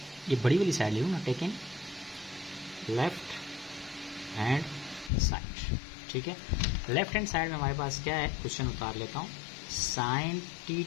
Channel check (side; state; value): right; drops out; at 5.1 s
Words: ये बड़ी वाली साइड ले लूँ ना, टेकिंग लेफ्ट हैंड साइड। ठीक है, लेफ्ट हैंड साइड में हमारे पास क्या है, क्वेश्चन उतार लेता हूँ। Sine